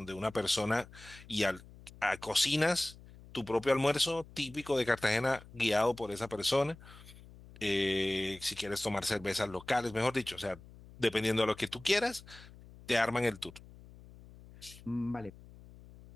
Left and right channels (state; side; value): noise; left; hum, 20 dB below the sound